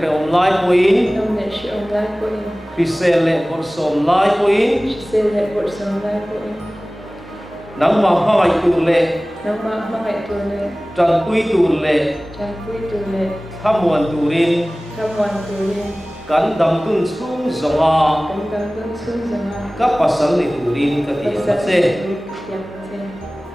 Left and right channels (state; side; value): normal; both; correlation 0.98